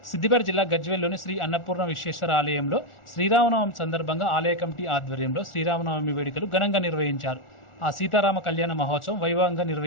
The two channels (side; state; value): right; late; 1.4 ms